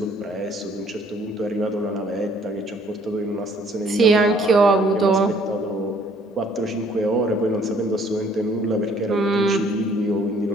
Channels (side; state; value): both; normal; correlation 0.60